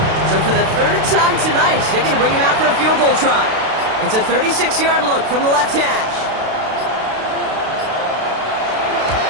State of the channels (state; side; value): late; left; 32 ms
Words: So for the third time tonight, they're going to bring him out for a field goal try. It's a 36-yard look from the left hash.